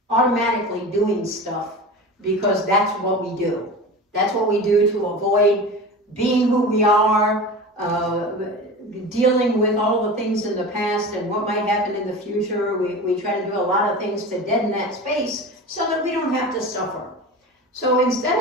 automatically doing stuff because that's what we do. That's what we do to avoid being who we are, dealing with all the things in the past and what might happen in the future. We try to do a lot of things to deaden that space so that we don't have to suffer. So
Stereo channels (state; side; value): normal; both; correlation 0.31